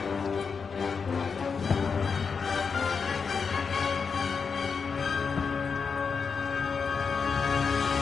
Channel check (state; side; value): quieter; right; 5.6 dB